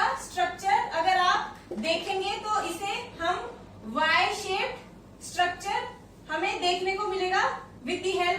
स्ट्रक्चर अगर आप देखेंगे तो इसे हम वाई शेप्ड स्ट्रक्चर हमें देखने को मिलेगा with the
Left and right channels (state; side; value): identical; both; correlation 1.00